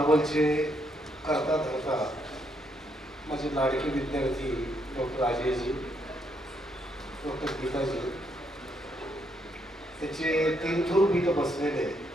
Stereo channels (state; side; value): normal; both; correlation 0.75